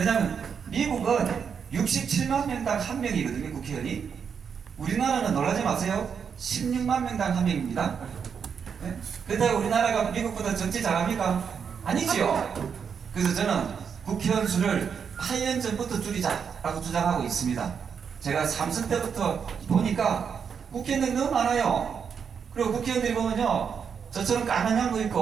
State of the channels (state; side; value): quieter; left; 6.8 dB